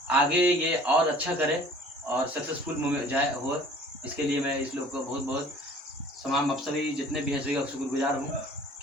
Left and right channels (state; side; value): normal; both; correlation 0.50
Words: आगे ये और अच्छा करे और सक्सेसफुल जाए हो। इसके लिए मैं इस लोग को बहुत बहुत तमाम, आप सभी जितने भी हैं सभी का शुक्रगुजार हूँ